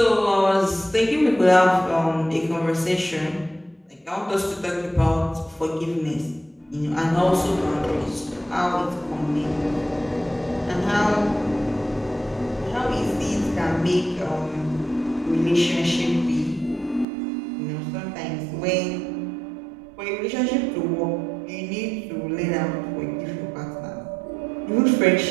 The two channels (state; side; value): drops out; left; at 17.1 s